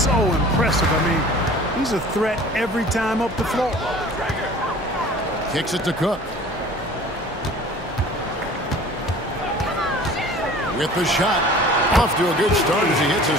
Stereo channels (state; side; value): normal; both; correlation 0.45